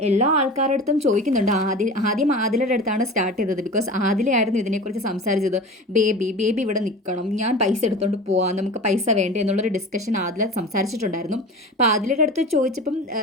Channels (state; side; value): normal; both; correlation 0.35